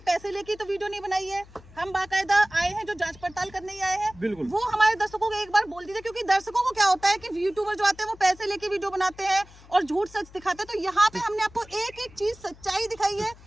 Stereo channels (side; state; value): left; noise; hum, 22 dB below the sound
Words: पैसे लेके तो वीडियो नहीं बनाई है, हम बाकायदा आए हैं जो जांच पड़ताल करने ही आए हैं। बिल्कुल, वो हमारे दर्शकों को एक बार बोल दीजिए, क्योंकि दर्शकों को क्या होता है कि यूट्यूबर जो आते हैं वो पैसे लेके वीडियो बनाते हैं और झूठ सच दिखाते हैं। तो यहाँ पे हमने आपको एक एक चीज सच्चाई दिखाई है।